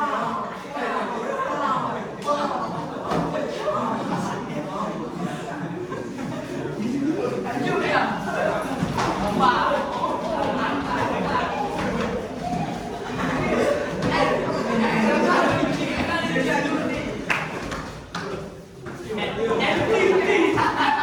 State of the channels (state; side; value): identical; both; correlation 1.00